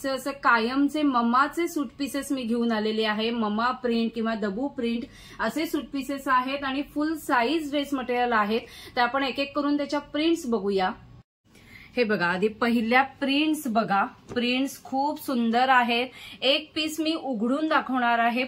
असं कायमचे ममाचे सूट पीसेस मी घेऊन आलेले आहे। ममा प्रिंट किंवा दबू प्रिंट असे सूट पीसेस आहेत आणि फुल साईज ड्रेस मटेरियल आहेत। तर आपण एक एक करून त्याच्या प्रिंट्स बघूया। हे बघा, आधी पहिल्या प्रिंट्स बघा। प्रिंट्स खूप सुंदर आहेत। एक पीस मी उघडून दाखवणार आहे,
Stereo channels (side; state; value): both; identical; correlation 1.00